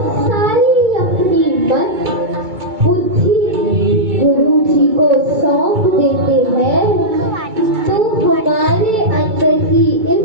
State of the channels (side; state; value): left; late; 2.2 ms